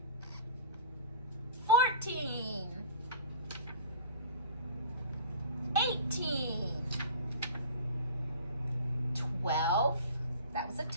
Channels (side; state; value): both; inverted; correlation -0.40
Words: 14. 18. 12. That was a